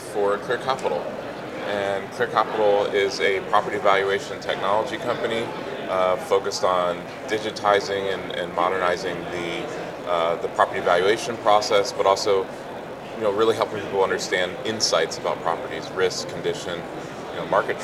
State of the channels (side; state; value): both; identical; correlation 1.00